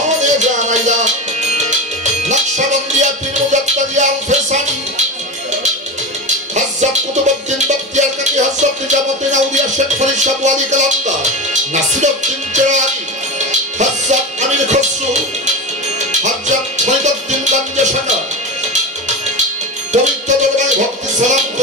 জানাইলাম নকশবন্দিয়া পীর মুজাদ্দিদ আল ফেসানি হযরত কুতুবউদ্দিন বখতিয়ার কাকি হযরত নিজামুদ্দিন আউলিয়া শেখ ফরিদ শাহ ওয়ালি কালামদার নাসিরউদ্দিন চেরাগী হযরত আমির খসরু হযরত ফরিদউদ্দিন গঞ্জসাগর পবিত্র দরবারে ভক্তি সালাম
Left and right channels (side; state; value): both; normal; correlation 0.21